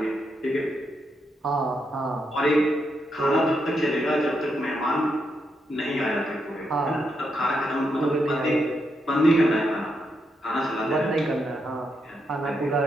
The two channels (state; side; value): normal; both; correlation 0.81